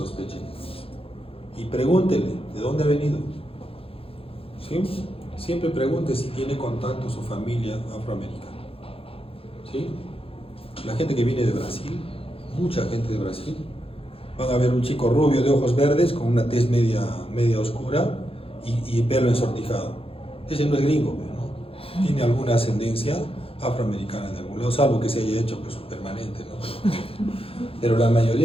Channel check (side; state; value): right; late; 0.27 ms